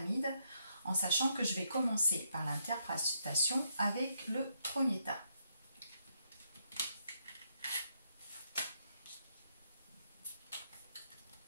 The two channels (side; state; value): both; inverted; correlation -0.77